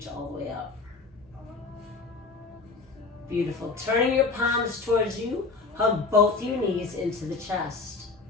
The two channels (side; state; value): right; quieter; 4.1 dB